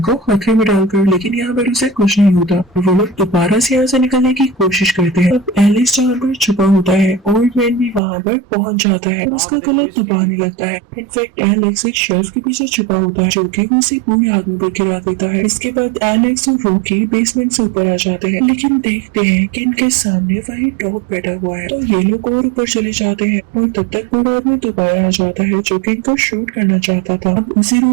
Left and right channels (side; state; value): left; drops out; at 8.0 s